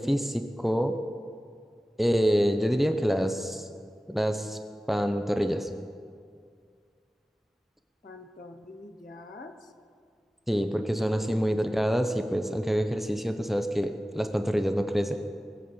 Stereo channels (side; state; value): both; normal; correlation 0.96